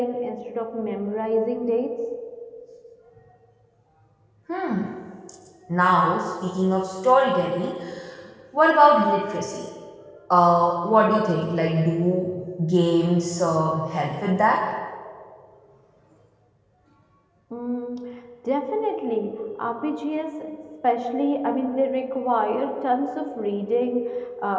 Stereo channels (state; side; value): identical; both; correlation 1.00